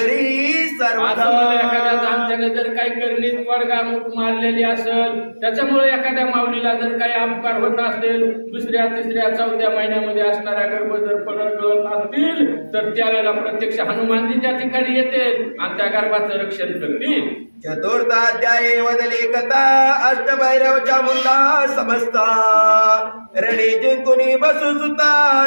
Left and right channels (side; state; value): both; inverted; correlation -1.00